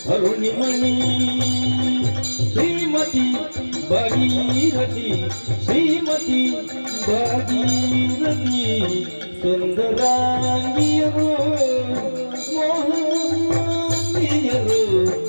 ಅರುಣಿಮಣಿ ಶ್ರೀಮತಿ ಭಾಗೀರಥಿ ಶ್ರೀಮತಿ ಭಾಗೀರಥಿ ಸುಂದರಾಂಗಿಯರು ಮೋಹನಾಂಗಿಯರು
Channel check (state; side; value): inverted; both; correlation -1.00